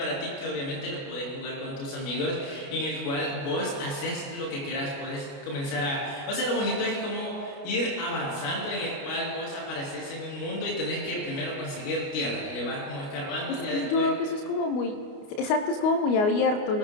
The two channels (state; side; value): late; right; 29 ms